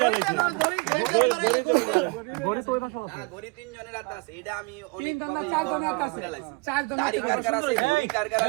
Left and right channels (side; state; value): left; quieter; 27.8 dB